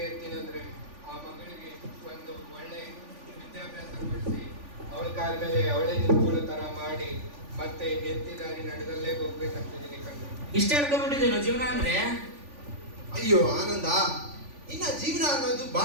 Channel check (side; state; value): left; late; 3.5 ms